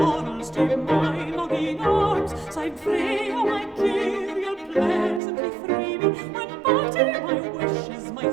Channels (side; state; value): left; drops out; at 5.2 s